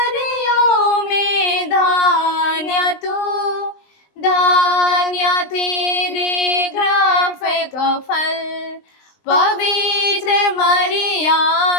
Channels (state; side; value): late; right; 20 ms